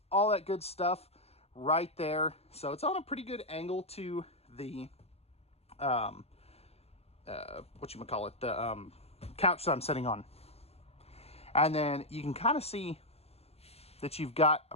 all that good stuff right there. So it's on a pretty good angle to the, the couch that I'm sitting on. And then you can kind of see that you've got a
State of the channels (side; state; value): right; late; 0.29 ms